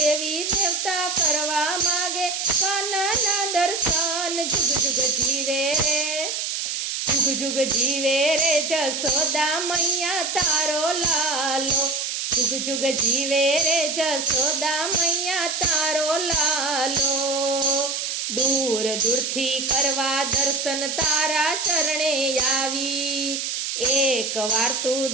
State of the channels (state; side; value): noise; right; hiss, 3 dB below the sound